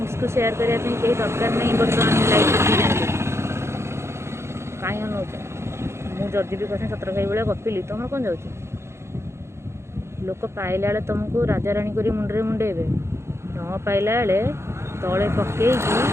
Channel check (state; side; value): late; left; 0.13 ms